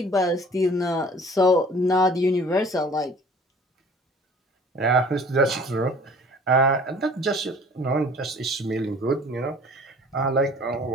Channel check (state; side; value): normal; both; correlation 0.50